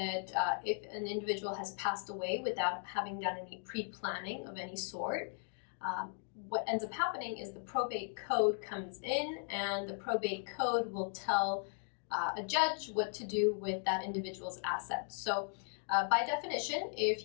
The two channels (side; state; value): right; silent; 53 dB below the other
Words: if an individual has passed away without having done any pre-planning of any sort, what ends up happening is the probate code comes in, and the probate code will tell a judge what to do with that individual's assets. So by definition, if